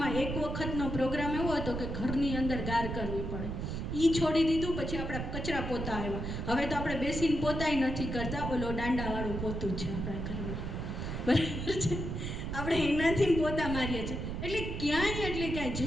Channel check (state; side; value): noise; right; rumble, 4 dB below the sound